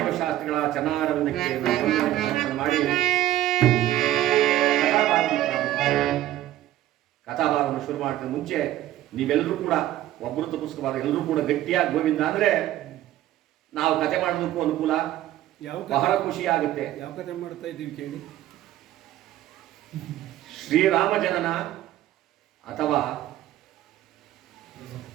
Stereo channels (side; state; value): left; quieter; 13.7 dB